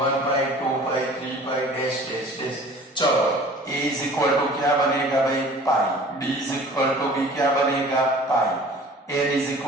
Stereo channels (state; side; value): normal; both; correlation 0.46